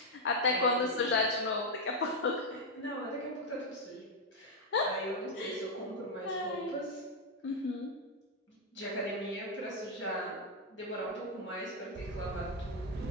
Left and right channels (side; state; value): both; normal; correlation 0.01